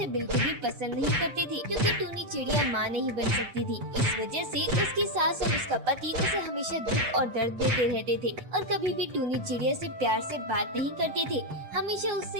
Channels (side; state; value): left; late; 8.0 ms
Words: बिल्कुल भी पसंद नहीं करते थे, क्योंकि टूनी चिड़िया माँ नहीं बन सकती थी। इस वजह से उसकी सास और उसका पति उसे हमेशा दुख और दर्द देते रहते थे और कभी भी टूनी चिड़िया से प्यार से बात नहीं करते थे, हमेशा